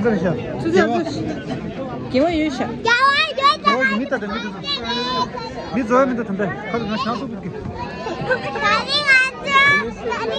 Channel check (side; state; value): both; identical; correlation 1.00